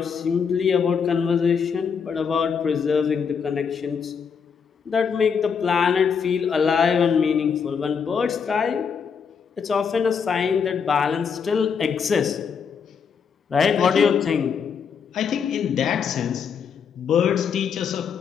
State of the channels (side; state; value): right; quieter; 6.5 dB